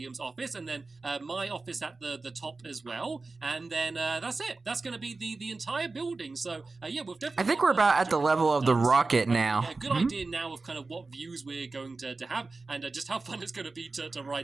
office, and then my office at the top as well. And then that's it. That's going to be the entire building. So, we've definitely... I think we're about at the level of the rocket now. A good idea now of kind of what views we're going to have, and just how fun it's going to be to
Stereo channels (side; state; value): left; quieter; 3.7 dB